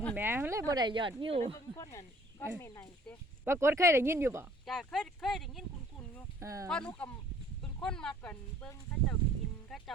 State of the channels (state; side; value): normal; both; correlation 0.56